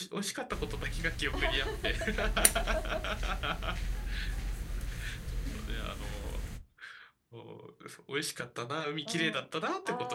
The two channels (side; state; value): both; identical; correlation 1.00